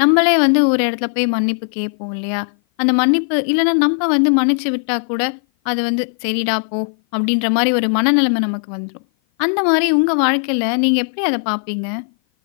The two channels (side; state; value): right; silent; 56 dB below the other